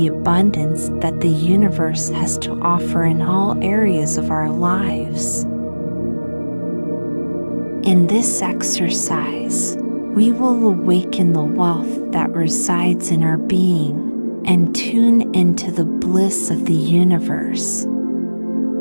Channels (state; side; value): inverted; both; correlation -1.00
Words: abundance that the universe has to offer in all areas of our lives. In this exercise, we will awaken the wealth that resides in our being and tune into the bliss of the universe.